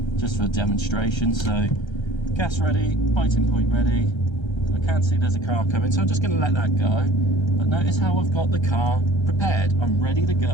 just for a demonstration. So gas ready, biting point ready. So I can see there's a car coming, so I'm just going to let that go. But notice how I've got the car prepared. I'm ready to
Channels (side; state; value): right; late; 1.3 ms